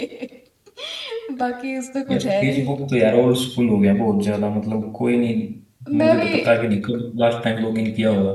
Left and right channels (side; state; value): both; identical; correlation 1.00